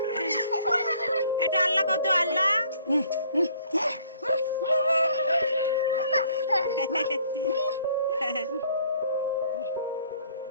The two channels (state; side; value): inverted; both; correlation -0.60